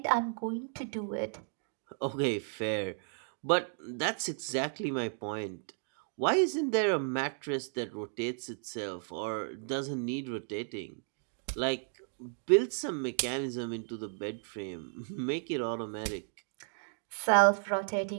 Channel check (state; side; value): silent; left; 55 dB below the other